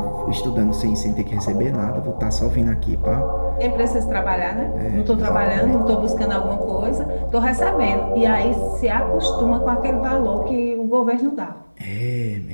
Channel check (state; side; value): inverted; both; correlation -1.00